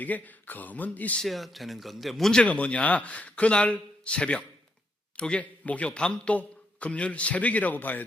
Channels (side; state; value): both; normal; correlation 0.78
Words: 검은 있어야 되는 건데, 문제가 뭐냐? 그날 새벽, 이게 목요 밤 또 금요일 새벽이라고 봐야